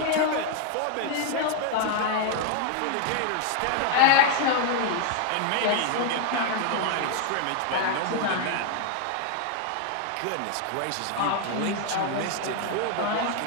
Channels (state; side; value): different; both; correlation 0.00